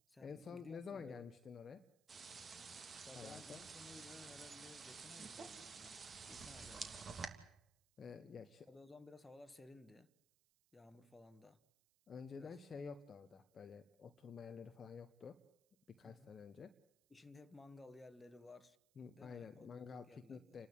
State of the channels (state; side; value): noise; right; hiss, 29 dB below the sound